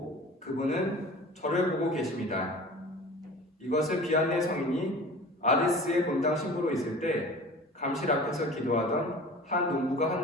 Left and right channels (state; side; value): normal; both; correlation 0.40